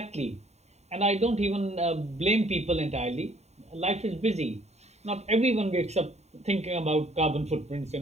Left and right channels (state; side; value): late; left; 0.32 ms